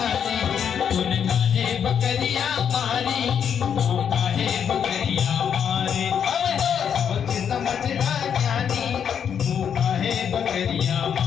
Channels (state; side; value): quieter; right; 8.0 dB